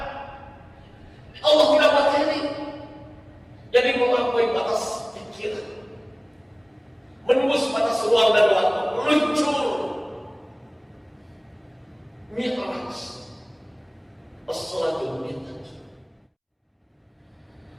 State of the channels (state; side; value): identical; both; correlation 1.00